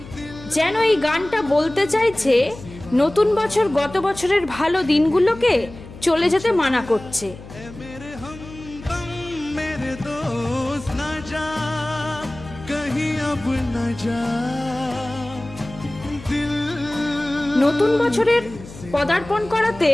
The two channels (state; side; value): noise; left; hum, 16 dB below the sound